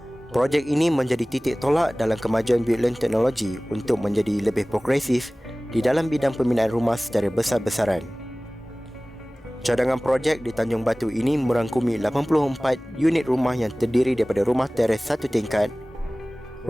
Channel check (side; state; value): both; normal; correlation 0.98